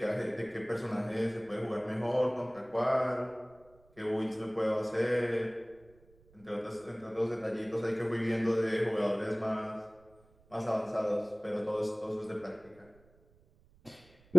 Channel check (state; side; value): noise; right; rumble, 28 dB below the sound